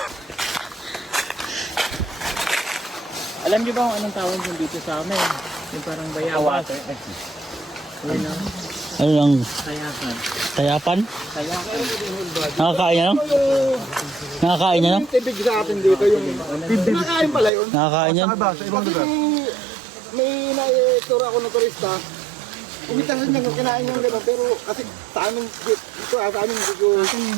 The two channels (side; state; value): left; drops out; at 17.5 s